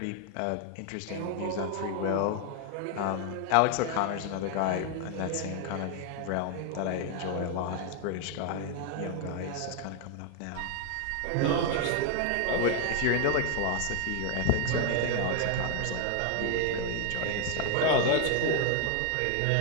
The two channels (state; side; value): different; both; correlation 0.01